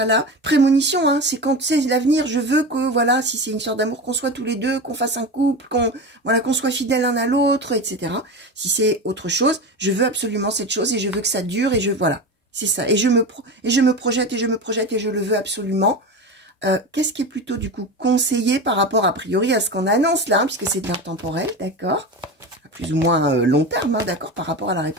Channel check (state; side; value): normal; both; correlation 0.25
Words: Prémonition, hein, c'est quand c'est l'avenir. Je veux que, voilà, si c'est une histoire d'amour, qu'on soit tous les deux, qu'on fasse un couple, qu'on soit fidèles l'un à l'autre, etc. Si c'est autre chose, je veux absolument cette chose et je veux que ça dure et voilà. C'est ça. Et je me projette et je me projette et je le veux absolument. Qu'est-ce qui est plutôt, du coup, conseillé par rapport, a priori, à ce qu'on annonce là, hein, puisque c'est de l'intemporel, d'accord? À plus ou moins long terme, hein, d'accord, par rapport à la